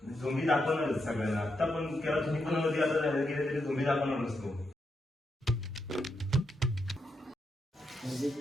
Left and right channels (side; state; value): both; normal; correlation 0.83